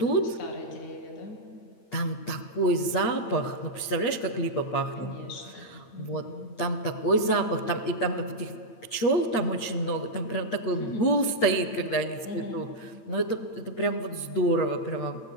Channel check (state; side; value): late; right; 8.9 ms